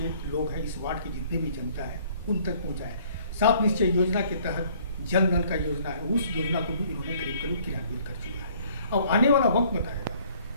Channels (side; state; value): both; inverted; correlation -0.58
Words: लोग हैं, इस वार्ड की जितने भी जनता है, उन तक पहुंचाया है। सात निश्चय योजना के तहत जन नल का योजना है, उस योजना को भी इन्होंने करीब करीब क्रियान्वित कर चुका है। अब आने वाला वक्त बताएगा